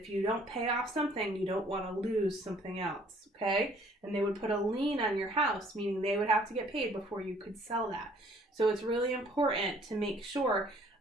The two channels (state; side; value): normal; both; correlation 0.58